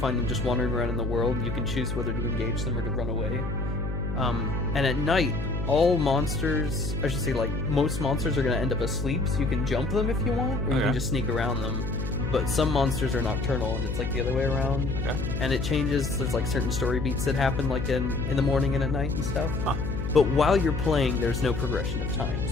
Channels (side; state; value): left; noise; hum, 4 dB below the sound